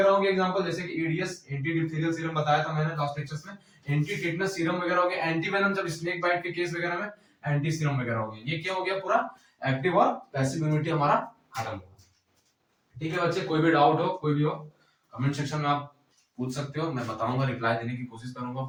होंगे एग्जांपल, जैसे कि एडीएस एंटी डिप्थीरियल सीरम बताया था मैंने लास्ट लेक्चर्स में, एंटी टेटनस सीरम वगैरह हो गया, एंटी वेनम जब स्नेक बाइट के केस वगैरह में एंटी सीरम वगैरह हो गया। ये क्या हो गया, पूरा एक्टिव और पैसिव इम्यूनिटी हमारा खत्म हो गया। ठीक है बच्चे, कोई भी डाउट हो, कोई भी हो, कमेंट सेक्शन में आप पूछ सकते हो, मैं बताऊंगा, रिप्लाई देने की कोशिश करूंगा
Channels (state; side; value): identical; both; correlation 1.00